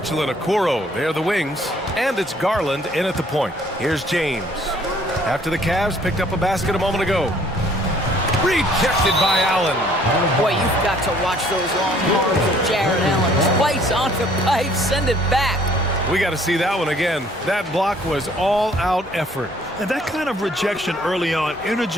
and Okoro, they're the wings. And it's Garland in at the point. Here's James. After the Cavs picked up a basket a moment ago. Rejected by Allen. Boy, you've got to watch those long arms of Jared Allen. Twice on the pipe, send it back. We got to see that one again. That block was all-out effort. And that kind of rejection early on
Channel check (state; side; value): normal; both; correlation 0.59